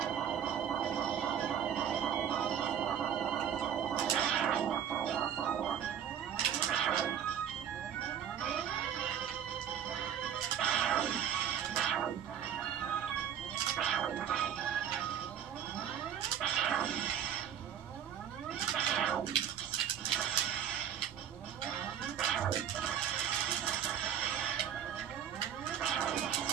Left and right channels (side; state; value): left; quieter; 9.1 dB